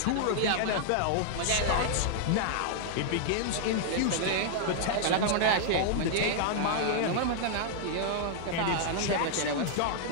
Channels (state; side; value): different; both; correlation -0.01